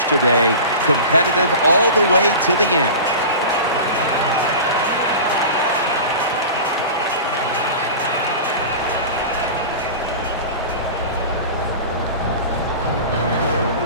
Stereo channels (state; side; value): inverted; both; correlation -0.33